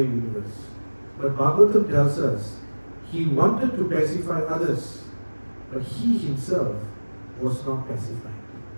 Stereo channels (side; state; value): both; inverted; correlation -1.00